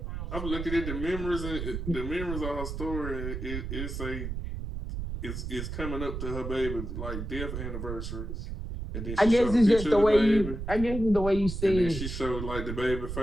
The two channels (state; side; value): noise; right; rumble, 5 dB below the sound